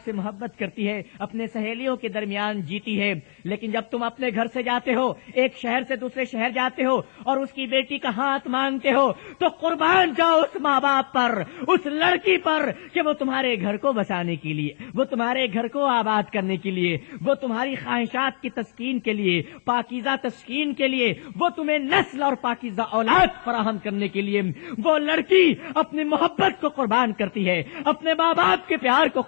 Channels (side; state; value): right; silent; digital silence